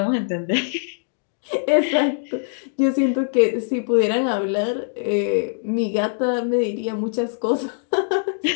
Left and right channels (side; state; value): right; silent; digital silence